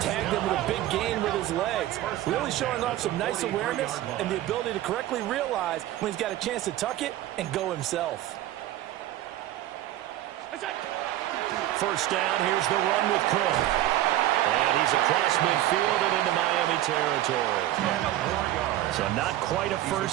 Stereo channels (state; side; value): quieter; left; 14.2 dB